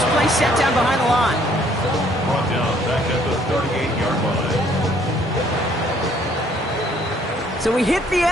play set down behind the line. Brought down back at the 38-yard line. So we hit the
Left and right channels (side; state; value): both; normal; correlation 0.63